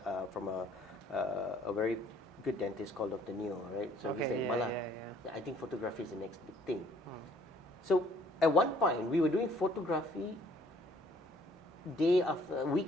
from a very good dentist called Dr. Neo, right? So he said, Bala, I think photography is the next big thing. So at one point, we were doing photography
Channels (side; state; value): both; normal; correlation 0.60